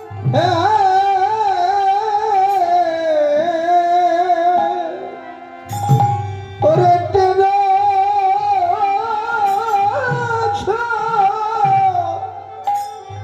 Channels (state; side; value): identical; both; correlation 1.00